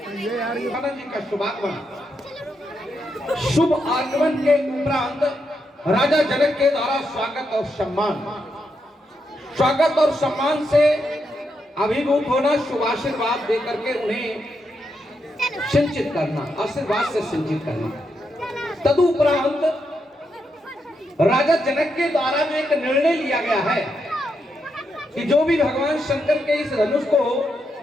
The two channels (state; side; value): normal; both; correlation 0.82